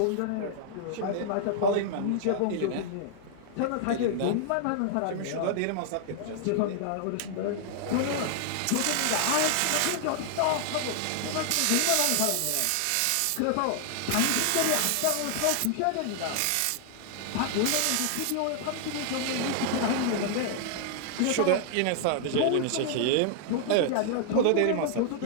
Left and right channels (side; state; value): both; different; correlation -0.01